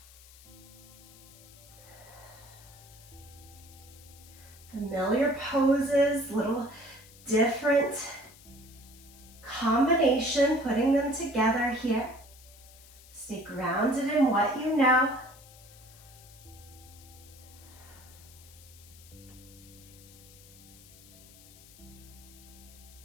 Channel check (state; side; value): noise; left; hiss, 21 dB below the sound